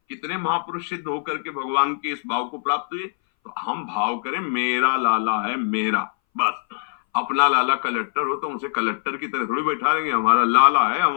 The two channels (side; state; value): right; silent; 61 dB below the other